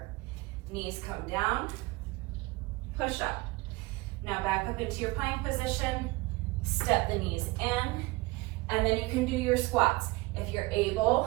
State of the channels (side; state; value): left; quieter; 22.6 dB